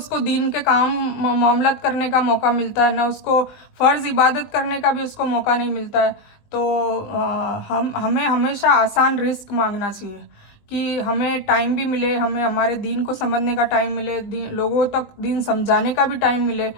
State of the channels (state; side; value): late; right; 20 ms